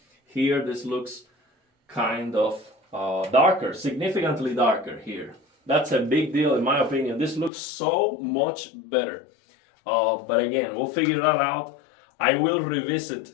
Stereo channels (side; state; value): right; drops out; at 7.5 s